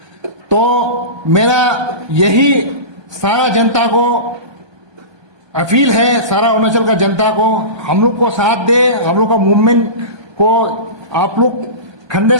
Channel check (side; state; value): left; late; 1.2 ms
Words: तो मेरा यही सारा जनता को अपील है, सारा अरुणाचल का जनता को हम लोग को साथ दे, हम लोग का मूवमेंट को आप लोग कंधे